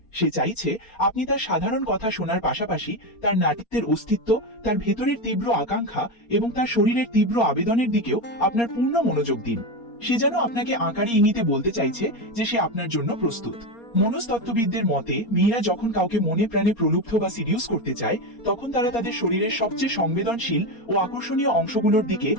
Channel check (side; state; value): right; late; 4.3 ms